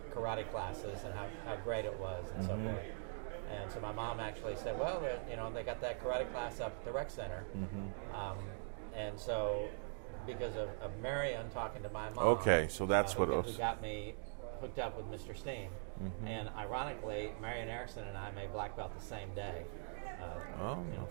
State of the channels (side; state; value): left; silent; digital silence